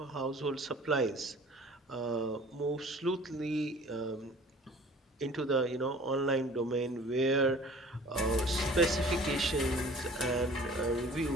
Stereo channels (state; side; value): normal; both; correlation 0.48